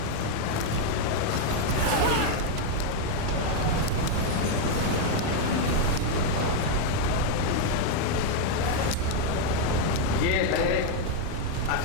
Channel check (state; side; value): different; both; correlation 0.01